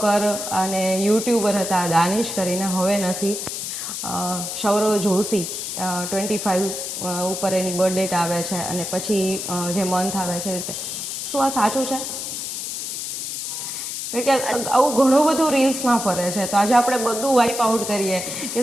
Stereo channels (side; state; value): left; noise; hiss, 5 dB below the sound